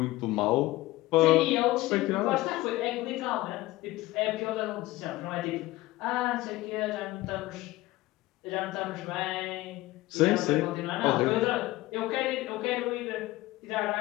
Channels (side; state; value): right; quieter; 18.4 dB